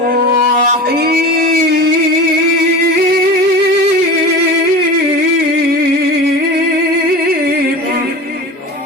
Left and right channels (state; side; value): normal; both; correlation 0.32